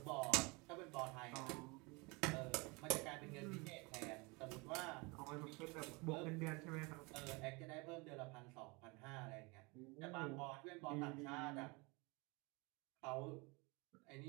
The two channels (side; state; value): left; quieter; 27.4 dB